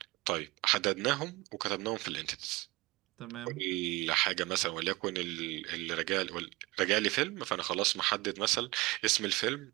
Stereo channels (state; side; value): quieter; left; 21.7 dB